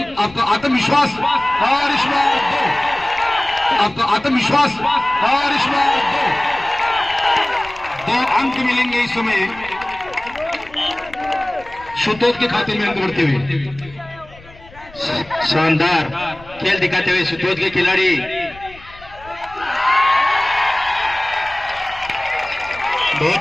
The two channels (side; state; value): left; noise; rumble, 21 dB below the sound